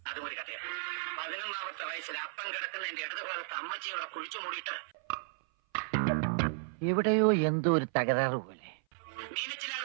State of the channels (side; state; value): left; silent; 55 dB below the other